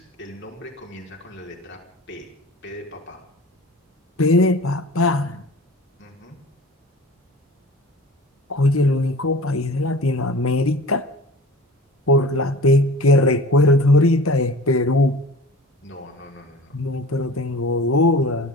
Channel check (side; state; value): both; normal; correlation 0.40